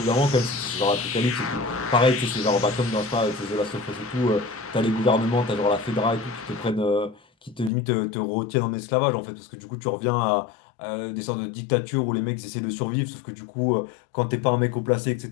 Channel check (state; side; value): drops out; right; at 7.7 s